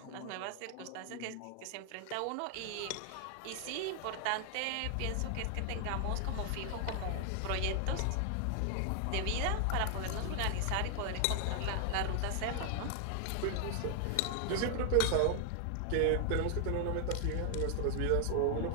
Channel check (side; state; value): both; different; correlation 0.00